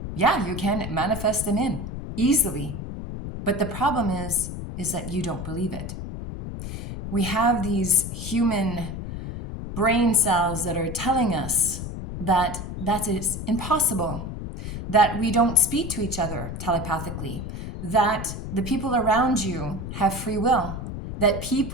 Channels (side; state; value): left; noise; rumble, 7 dB below the sound